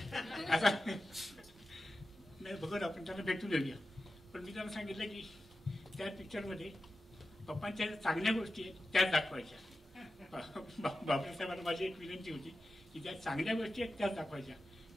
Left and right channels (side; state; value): both; normal; correlation 0.93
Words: आता नाही बघत, आपण त्याला भेटून येऊया. पण मी त्यांना सांगितलं की त्या पिक्चरमध्ये पप्पांच्या चांगल्या गोष्टी आहेत त्याच दाखवायच्या. बाबरे साहेबांना माझी एक विनंती होती की ज्या चांगल्या गोष्टी आहेत त्याच दाखवायच्या.